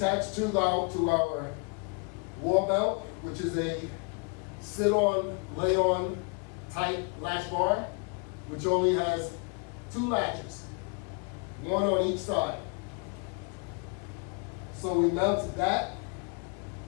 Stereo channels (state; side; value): quieter; right; 35.4 dB